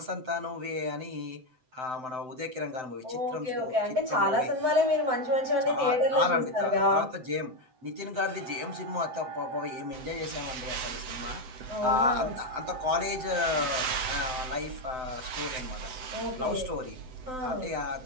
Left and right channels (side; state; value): left; late; 7.8 ms